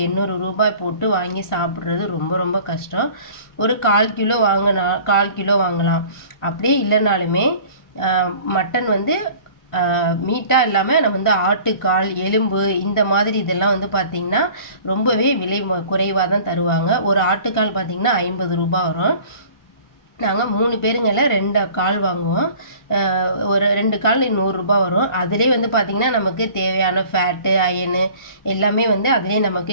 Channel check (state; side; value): late; right; 1.5 ms